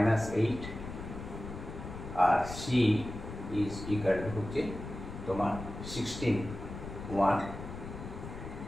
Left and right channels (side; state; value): left; noise; rumble, 9 dB below the sound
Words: আর c ইজ ইকুয়াল টু হচ্ছে তোমার 16, 1,